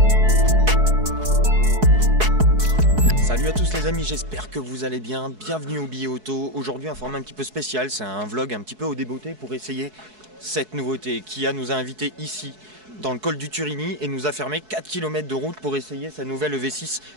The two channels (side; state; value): left; late; 4.7 ms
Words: Salut à tous les amis, j'espère que vous allez bien. Bienvenue au Billet Auto. Aujourd'hui un format un petit peu spécial, c'est un vlog un petit peu au débeauté pour essayer cette nouveauté. Kia nous a invités ici dans le col du Turini et nous a fermé 4 km de route pour essayer sa nouvelle EV6